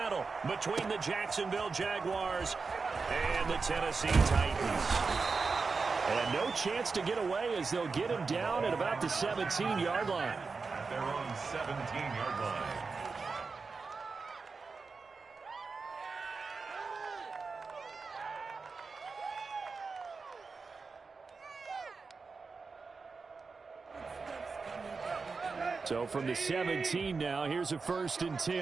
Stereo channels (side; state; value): left; quieter; 4.5 dB